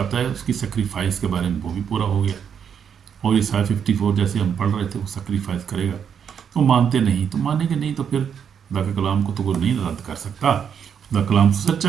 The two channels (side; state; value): left; quieter; 7.7 dB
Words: ہے اس کی سیکریفائس کے بارے میں، وہ بھی پورا ہو گیا۔ اور عیسائی 54 جیسے ہم پڑھ رہے تھے وہ سیکریفائس کرے گا، تو مانتے نہیں، تو مانیں گے نہیں تو پھر خدا کے کلام کو تو وہ نہیں رد کر سکتا۔ خدا کلام